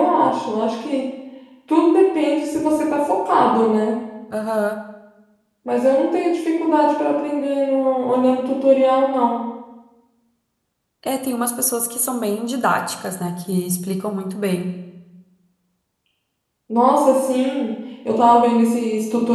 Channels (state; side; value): identical; both; correlation 1.00